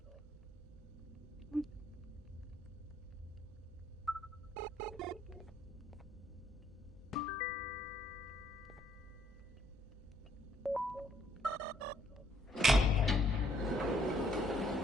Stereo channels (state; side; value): normal; both; correlation 0.68